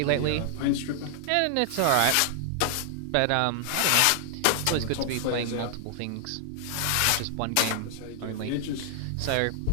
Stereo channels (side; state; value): both; different; correlation 0.00